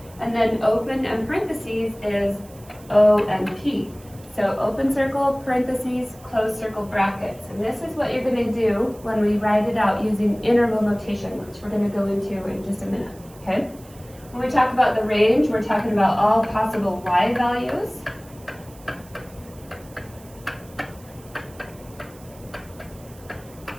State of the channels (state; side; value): noise; right; hiss, 24 dB below the sound